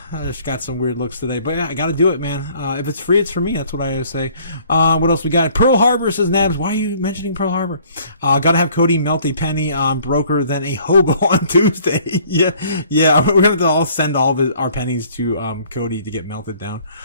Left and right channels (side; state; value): both; inverted; correlation -0.57